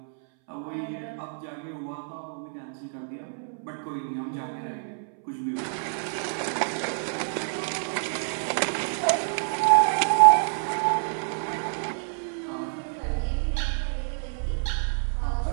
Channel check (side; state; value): left; silent; 60 dB below the other